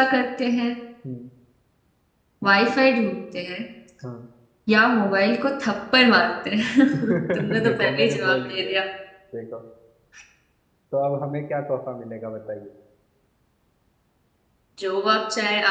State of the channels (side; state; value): both; identical; correlation 1.00